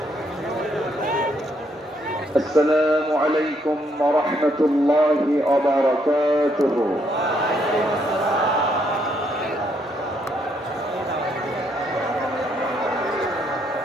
السلام عليكم ورحمة الله وبركاته.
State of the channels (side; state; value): both; normal; correlation 0.73